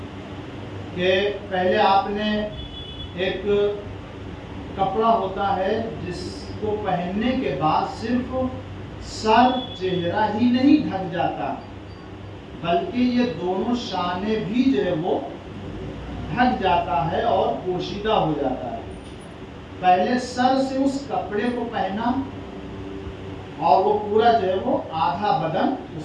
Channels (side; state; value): both; identical; correlation 1.00